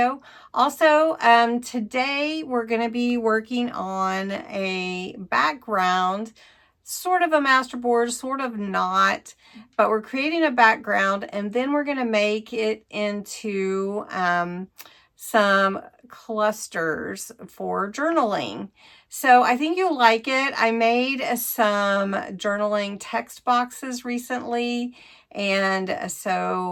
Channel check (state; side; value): identical; both; correlation 1.00